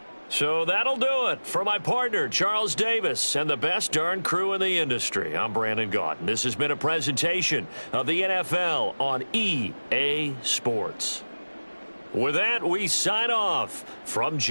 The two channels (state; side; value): inverted; both; correlation -1.00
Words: So that'll do it. For my partner, Charles Davis, and the best darn crew in the industry, I'm Brandon Gaudin. This has been a presentation of the NFL on EA Sports. With that, we sign off from